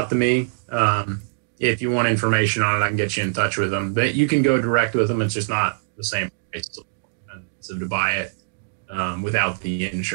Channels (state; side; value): silent; left; digital silence